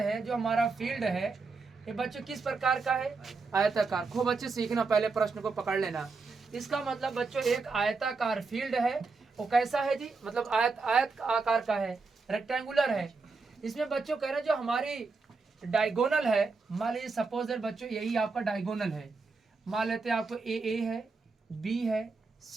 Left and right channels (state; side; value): quieter; left; 4.2 dB